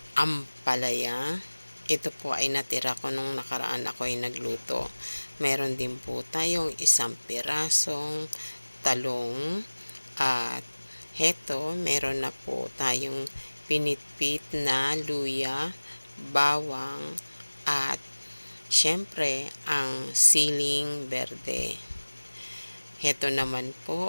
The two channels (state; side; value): inverted; both; correlation -1.00